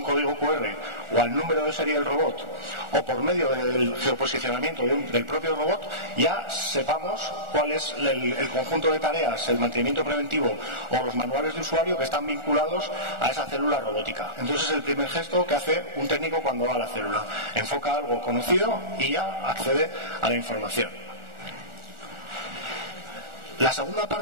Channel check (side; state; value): left; late; 1.4 ms